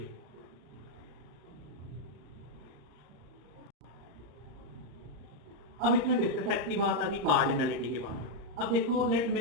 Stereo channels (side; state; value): left; late; 34 ms